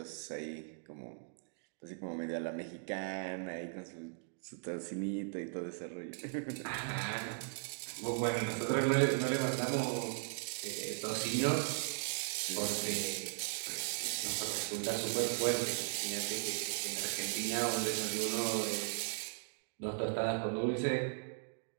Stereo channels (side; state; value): left; silent; digital silence